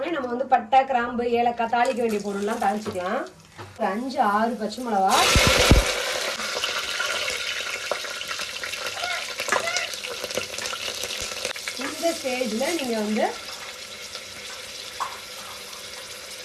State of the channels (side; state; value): both; identical; correlation 1.00